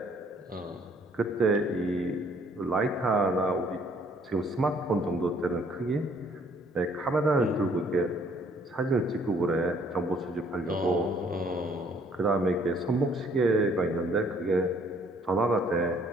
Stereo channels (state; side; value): normal; both; correlation 0.62